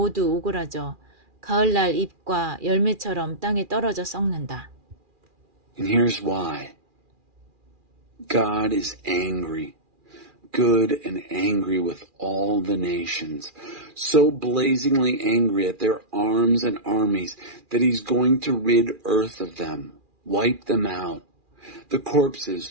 오그라져 가을날 잎과 열매처럼 땅에 떨어져 썩는다. And here's why. God is angry, good and angry with all the nations, so blazingly angry at their arms and armies that he's going to rid earth of them, wipe them out. The corpses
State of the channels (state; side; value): late; left; 2.4 ms